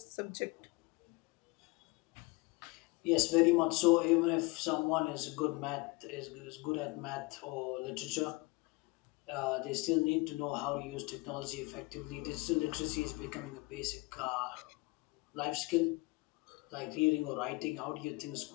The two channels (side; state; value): right; quieter; 24.6 dB